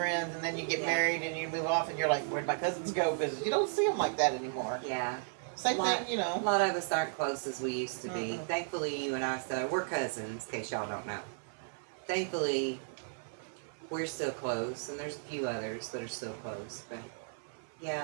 and then you get Yeah. married and you move off and you're like, where'd my cousins go? Because you don't see them like that anymore. Yeah. Same thing, A lot of us aren't close as we used to be. Mm-mm. Thankfully, you and I, we're cousins, in case y'all don't know. Thankfully, we're still close, and there's a few others that are still close. But, yeah,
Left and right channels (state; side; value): silent; left; 55 dB below the other